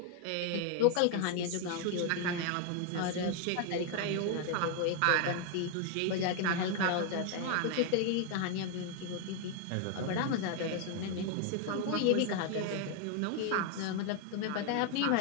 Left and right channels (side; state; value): both; different; correlation 0.01